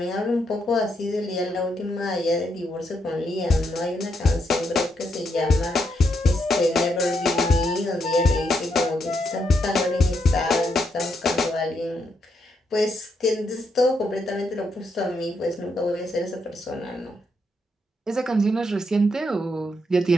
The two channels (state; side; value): normal; both; correlation 0.79